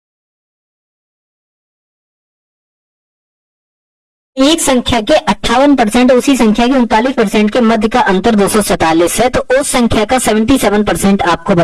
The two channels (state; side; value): identical; both; correlation 1.00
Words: एक संख्या के 58% उसी संख्या के 39% के मध्य का अंतर 247 है, तो उस संख्या का 77% आपको